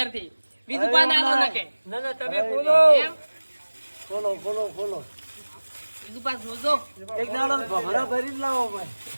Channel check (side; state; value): both; inverted; correlation -1.00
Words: બીજું પણ આલો ન કે ના તમે ખોલો. એમ ખોલો બીજું પાસ જોજો. એક દાડો ભમરા ભરીને લાવો ભાઈ.